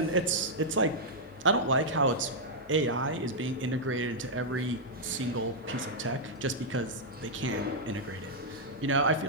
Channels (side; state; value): both; normal; correlation -0.06